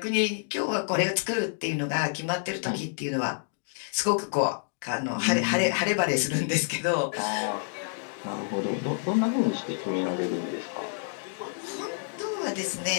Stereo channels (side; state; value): right; silent; digital silence